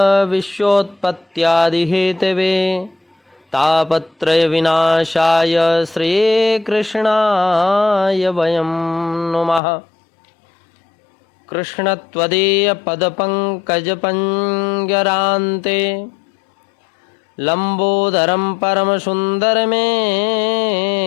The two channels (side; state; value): right; drops out; at 9.6 s